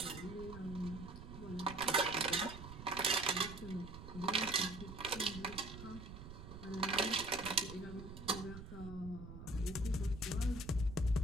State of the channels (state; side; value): noise; right; rumble, 11 dB below the sound